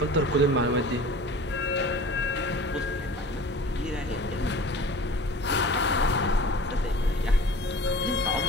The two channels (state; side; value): normal; both; correlation 0.41